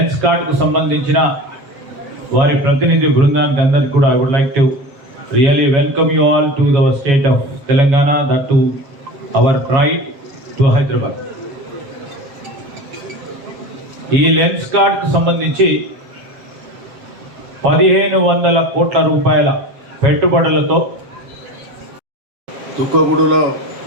కార్డ్కు సంబంధించిన వారి ప్రతినిధి బృందానికి అందరికీ కూడా I would like to really welcome you all to the state of Telangana, that to our pride, to Hyderabad. ఈ లెన్స్ కార్డ్కు సంబంధించి 1500 కోట్ల రూపాయల పెట్టుబడులతో తుక్కగూడలో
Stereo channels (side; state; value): left; late; 7.3 ms